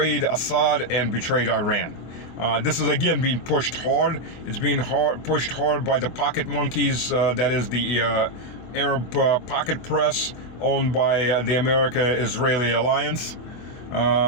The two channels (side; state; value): right; late; 24 ms